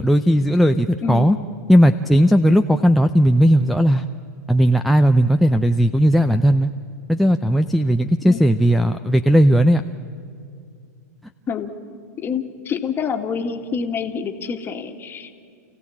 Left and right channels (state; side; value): normal; both; correlation 0.91